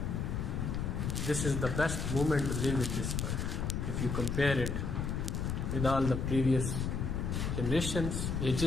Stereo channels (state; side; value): noise; left; rumble, 1 dB below the sound